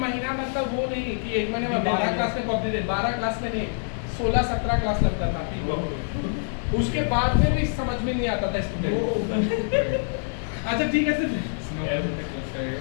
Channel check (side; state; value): right; silent; digital silence